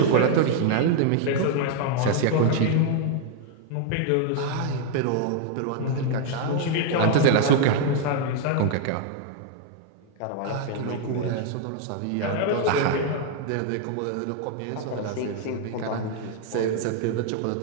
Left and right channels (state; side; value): different; both; correlation 0.00